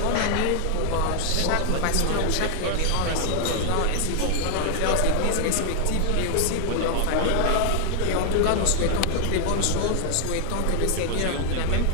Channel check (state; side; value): different; both; correlation 0.00